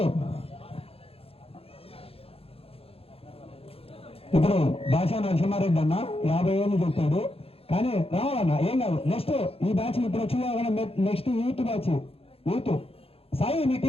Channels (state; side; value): late; right; 0.28 ms